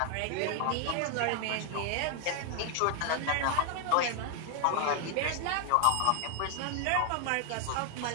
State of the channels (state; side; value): different; both; correlation 0.00